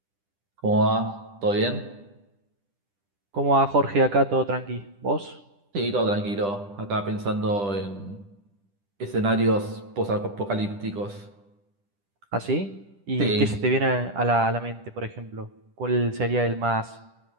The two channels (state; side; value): late; left; 10 ms